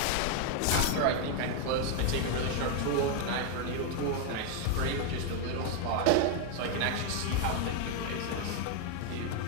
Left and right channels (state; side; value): different; both; correlation 0.01